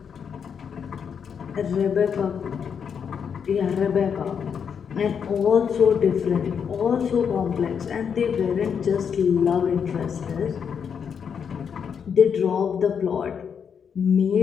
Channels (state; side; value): quieter; right; 7.1 dB